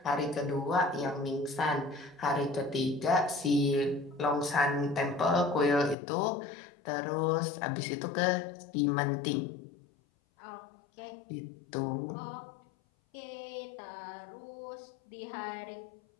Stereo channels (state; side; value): drops out; right; at 6.0 s